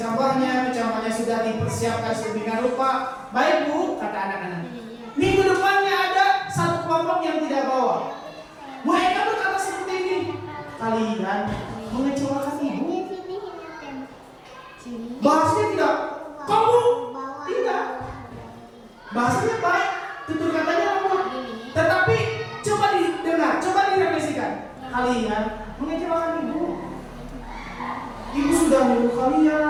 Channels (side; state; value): both; identical; correlation 1.00